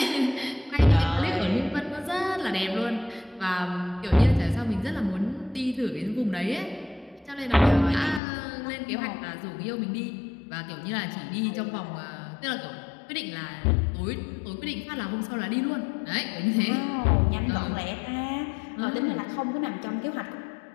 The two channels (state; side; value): drops out; right; at 8.2 s